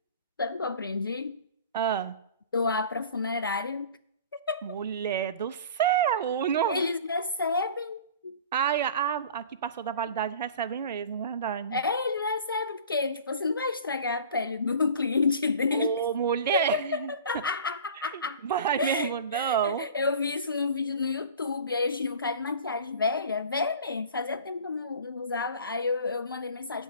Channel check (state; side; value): inverted; both; correlation -0.41